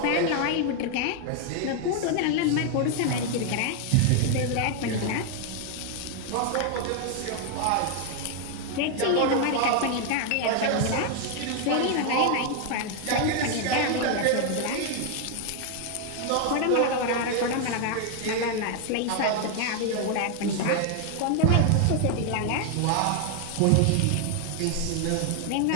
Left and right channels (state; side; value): different; both; correlation 0.00